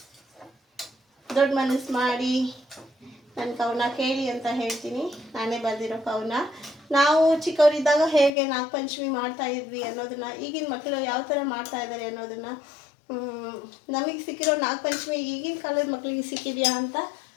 ದೊಡ್ಡ ಮನಸ್ಸು ಮಾಡಿ ನನ್ನ ಕವನ ಕೇಳಿ ಅಂತ ಹೇಳ್ತೀನಿ. ನಾನೇ ಬರೆದಿರೋ ಕವನ. ನಾವು ಚಿಕ್ಕವರಿದ್ದಾಗ ಹೇಗೆ ನಾಗಪಂಚಮಿ ಮಾಡ್ತಾ ಇದ್ವಿ ಅನ್ನೋದನ್ನು, ಈಗಿನ ಮಕ್ಕಳು ಯಾವ ಥರ ಮಾಡ್ತಾ ಇದ್ದಾರೆ ಅನ್ನೋದನ್ನು, ನಮಗೆ ಸಿಕ್ಕಿರೋ ನಾಗಪಂಚಮಿ ಈಗಿನ ಕಾಲದ ಮಕ್ಕಳಿಗೆ ಸಿಕ್ಕಿದೆಯಾ ಅಂತ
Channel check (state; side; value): drops out; right; at 8.3 s